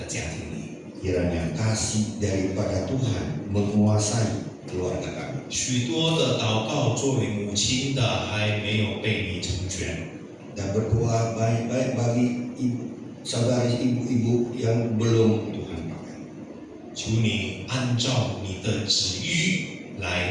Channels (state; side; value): identical; both; correlation 1.00